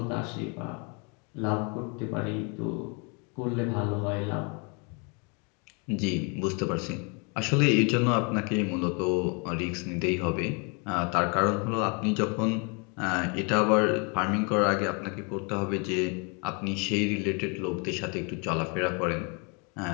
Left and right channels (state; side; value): quieter; right; 34.0 dB